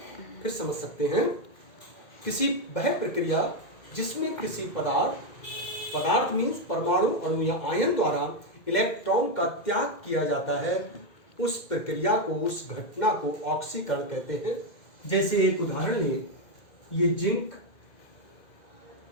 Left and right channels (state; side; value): late; right; 2.2 ms